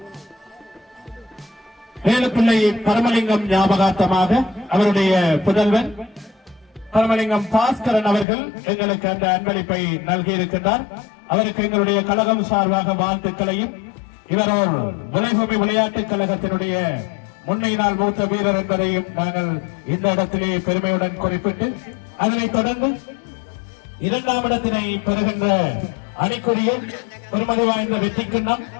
வேலுப்பிள்ளை பரமலிங்கம் ஞாபகார்த்தமாக அவருடைய புதல்வன் பரமலிங்கம் பாஸ்கரன் அவர்கள் எங்களுக்கு அந்த அன்பளிப்பை நல்கியிருக்கின்றார். அவருக்கு எங்களுடைய கழகம் சார்பாக வாழ்த்துக்களையும், இவரோர் விளைபூமி விளையாட்டுக் கழகத்தினுடைய முன்னையினால் மூத்த வீரர் என்பதையும் நாங்கள் இந்த இடத்திலே பெருமையுடன் குறிப்பிட்டு, அதனைத் தொடர்ந்து இரண்டாம் இடத்தினை பெறுகின்ற அணிக்குரிய பெருமதி வாய்ந்த வெற்றி கிண்ணம்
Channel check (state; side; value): drops out; right; at 8.2 s